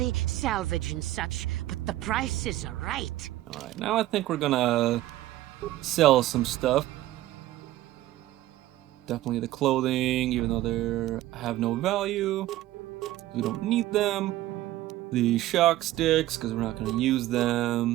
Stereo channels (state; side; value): quieter; left; 15.3 dB